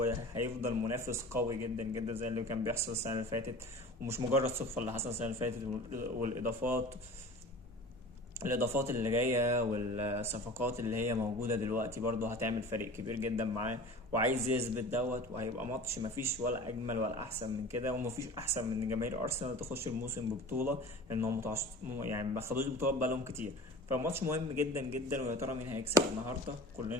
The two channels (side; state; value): both; normal; correlation 0.39